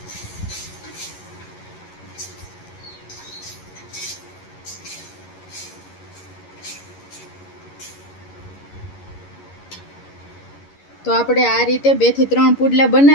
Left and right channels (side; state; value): right; late; 11 ms